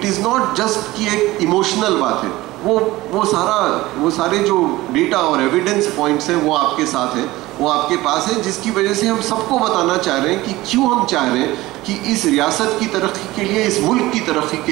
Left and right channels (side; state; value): left; quieter; 18.5 dB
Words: इज़ नॉट जस्ट कि एक इमोशनल बात है, वो सारे जो डेटा और एविडेंस पॉइंट्स हैं वो आपके साथ हैं, वो आपके पास है, जिसकी वजह से हम सबको बताना चाह रहे हैं कि क्यों हम चाह रहे हैं कि इस रियासत की तरक्की के लिए, इस मुल्क की तरक्की